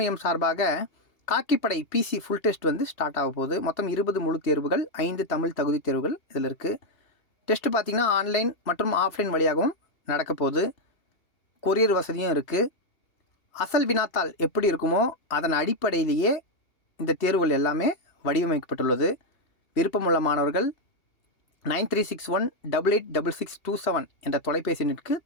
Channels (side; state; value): right; late; 2.8 ms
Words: சார்பாக காக்கிப்படை பிசி ஃபுல் டெஸ்ட் ஸ்டார்ட் ஆக போகுது. மொத்தம் 20 முழு தேர்வுகள், 5 தமிழ் தகுதி தேர்வுகள் இதில் இருக்குது. டெஸ்ட்டு பார்த்திங்கன்னா ஆன்லைன் மற்றும் ஆஃப்லைன் வழியாகவும் நடக்க போகுது. கொரியர் வசதியும் இருக்குது. அசல் வினாத்தாள் எப்படி இருக்குமோ அதன் அடிப்படையிலேயே இந்த தேர்வுகள் எல்லாமே வடிவமைக்கப்பட்டுள்ளது. விருப்பமுள்ள மாணவர்கள் 9361886627 என்ற தொலைபேசி எண்ணிற்கு